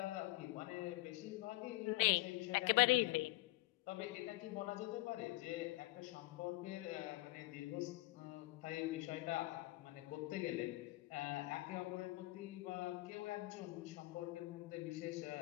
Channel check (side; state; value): right; quieter; 20.1 dB